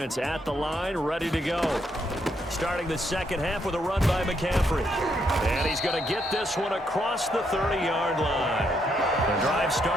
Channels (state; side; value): normal; both; correlation 0.76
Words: at the line, ready to go. Starting the second half with a run by McCaffrey. And he's going to get this one across the 30-yard line. The drive